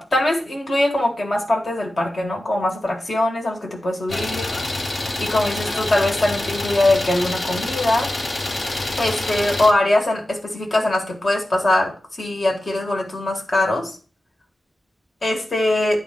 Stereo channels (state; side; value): normal; both; correlation 0.93